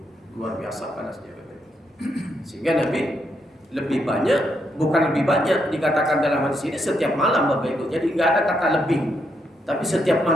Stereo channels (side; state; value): both; normal; correlation 0.78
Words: luar biasa panasnya Bapak. Sehingga Nabi lebih banyak, bukan lebih banyak dikatakan dalam hadis ini setiap malam Bapak Ibu. Jadi nggak ada kata lebih, tapi setiap